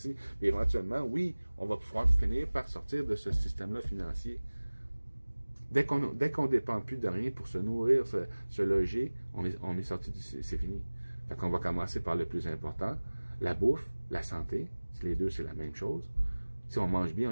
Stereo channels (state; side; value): inverted; both; correlation -1.00